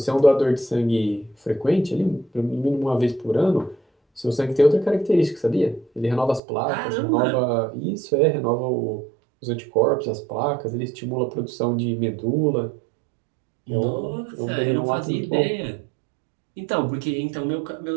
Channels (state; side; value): drops out; left; at 6.4 s